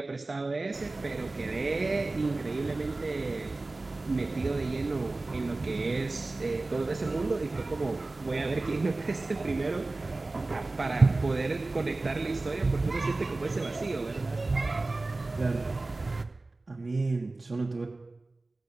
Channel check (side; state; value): left; quieter; 3.2 dB